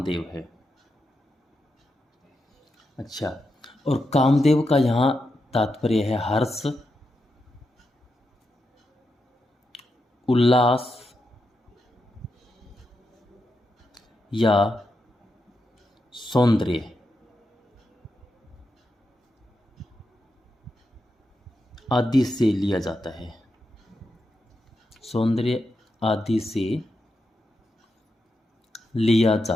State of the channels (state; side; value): normal; both; correlation 0.86